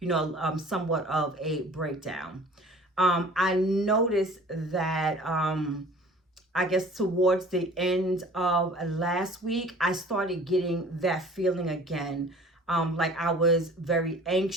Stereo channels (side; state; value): both; normal; correlation 0.47